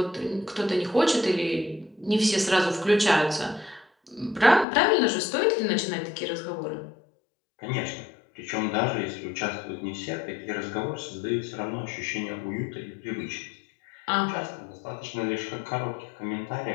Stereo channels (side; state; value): right; drops out; at 4.7 s